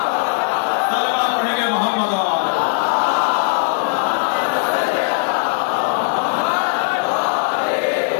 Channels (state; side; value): silent; right; digital silence